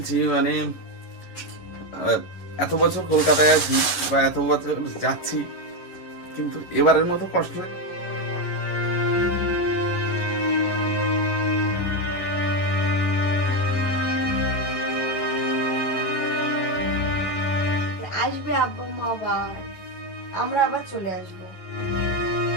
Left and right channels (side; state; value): right; late; 11 ms